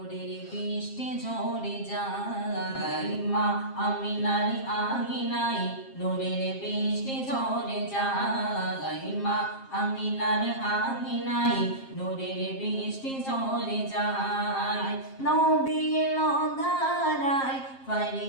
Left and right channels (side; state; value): right; late; 7.5 ms